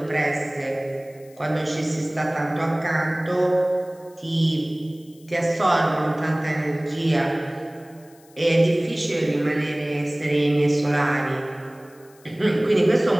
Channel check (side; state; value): left; noise; hiss, 28 dB below the sound